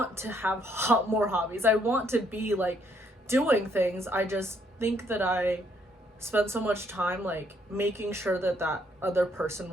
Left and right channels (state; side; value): normal; both; correlation 0.69